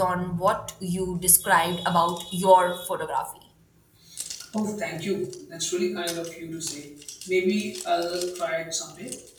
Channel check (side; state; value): both; identical; correlation 1.00